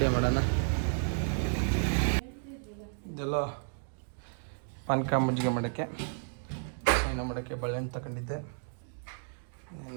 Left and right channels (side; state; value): left; silent; 56 dB below the other